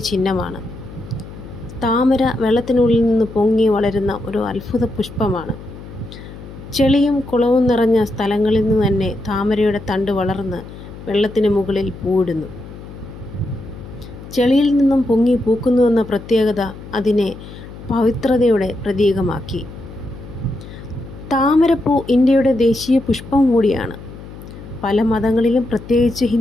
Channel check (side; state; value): left; noise; hum, 15 dB below the sound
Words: ചിഹ്നമാണ്. താമര വെള്ളത്തിനുള്ളിൽ നിന്ന് പൊങ്ങി വളരുന്ന ഒരു അത്ഭുത പുഷ്പമാണ്. ചെളിയും കുളവും നിറഞ്ഞ സ്ഥലങ്ങളിൽ നിന്ന് തന്നെ താമരയുടെ തണ്ട് വളർന്ന് വെള്ളത്തിന് മുകളിൽ പൂവിടുന്നു. ചെളിയിൽ നിന്നും പൊങ്ങി പൂക്കുന്നുവെന്ന പ്രത്യേകത അതിനെ പവിത്രതയുടെ പ്രതീകമാക്കി. താമരപ്പൂ ഇന്ത്യയുടെ ദേശീയ പുഷ്പം കൂടിയാണ്. പല മതങ്ങളിലും, പ്രത്യേകിച്ച്